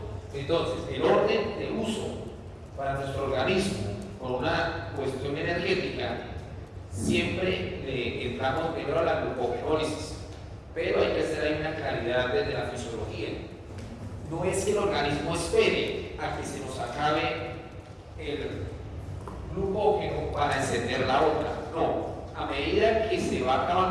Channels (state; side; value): identical; both; correlation 1.00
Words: Entonces, el orden de uso para nuestro organismo por una cuestión energética, siempre le entramos primero a la glucogenólisis, pero hay que hacer ahí una claridad desde la fisiología. No es que el organismo espere a que se nos acabe el glucógeno para encender la otra, no. A medida que se va